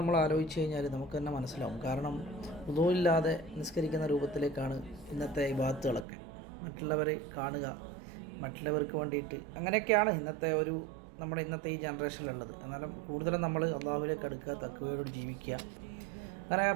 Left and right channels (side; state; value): left; drops out; at 6.1 s